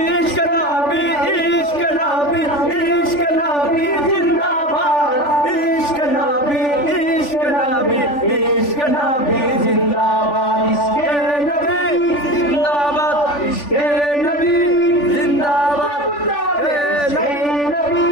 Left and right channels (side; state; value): right; late; 3.4 ms